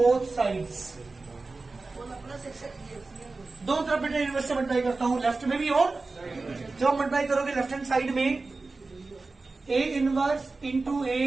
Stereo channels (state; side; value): quieter; left; 3.7 dB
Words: sides. दो तरफ बेटा इनवर्स से मल्टीप्लाई करता हूं, लेफ्ट में भी और जब आप मल्टीप्लाई करोगे लेफ्ट हैंड साइड में ए इनवर्स इंटू ए